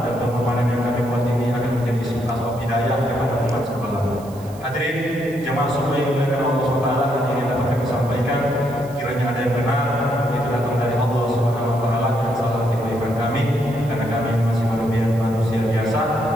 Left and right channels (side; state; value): right; noise; hiss, 23 dB below the sound